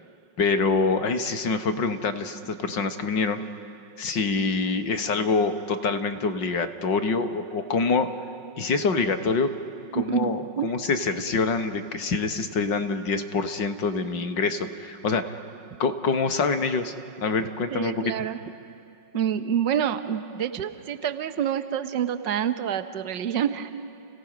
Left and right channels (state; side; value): late; right; 5.5 ms